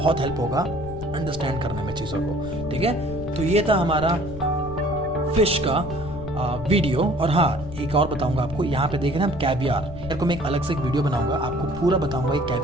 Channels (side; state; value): left; noise; rumble, 11 dB below the sound